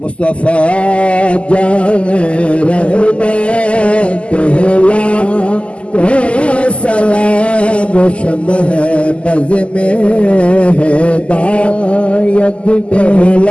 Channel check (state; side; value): late; right; 0.056 ms